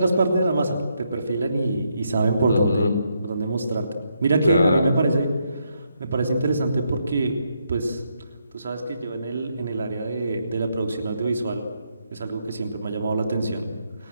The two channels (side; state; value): both; inverted; correlation -0.78